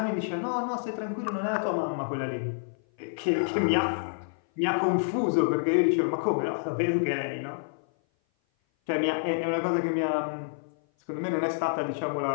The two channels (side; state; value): right; silent; 56 dB below the other